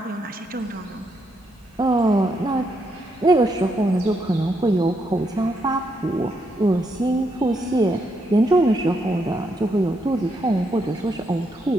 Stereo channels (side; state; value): both; normal; correlation 0.78